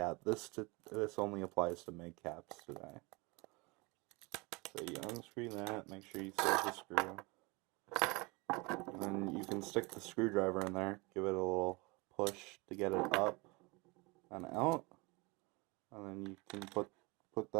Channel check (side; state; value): left; quieter; 26.6 dB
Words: this only applies to mid-caps today. So you unscrew that. Make sure you still have the screw. And then you can stick the screwdriver in there. Give it a little push to get it up and out. And then you can put